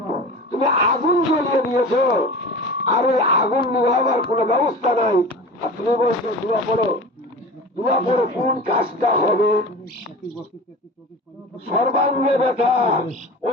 তুমি আগুন জ্বলিয়ে দিয়েছো, আর ওই আগুন নিভাবার কোন ব্যবস্থা নাই, আর তুমি বলছো দোয়া করো। দোয়া করে কোন কাজটা হবে? সর্বাঙ্গে ব্যথা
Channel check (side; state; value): both; normal; correlation 0.34